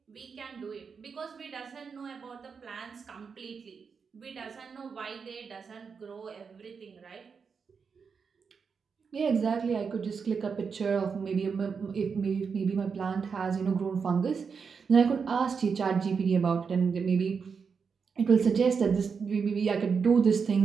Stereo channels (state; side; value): quieter; left; 5.8 dB